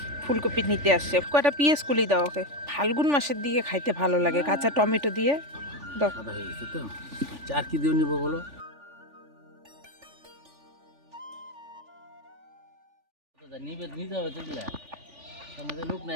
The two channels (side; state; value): left; late; 3.4 ms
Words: ফুলকপি নিতে আসছে। কয়টা পিএস কুলি দাও ওকে, ফাল্গুন মাসের দিকে খাইতে ভালো লাগে, কাঁচা টমেটো দিয়ে দাও। সাদা হয়ে গেছে তো। আচ্ছা, আর কি দিয়ে নিব বলো? নিবে নিতে হবে তো, এগুলা সমাজে লোক না